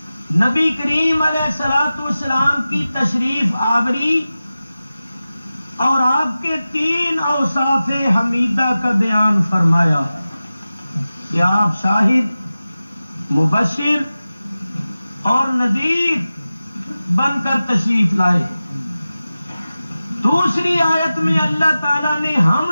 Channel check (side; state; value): both; inverted; correlation -0.96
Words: نبی کریم علیہ الصلوۃ والسلام کی تشریف آوری اور آپ کے 3 اوصاف حمیدہ کا بیان فرمایا کہ آپ شاہد، مبشر اور نذیر بن کر تشریف لائے۔ دوسری آیت میں اللہ تعالیٰ نے ہم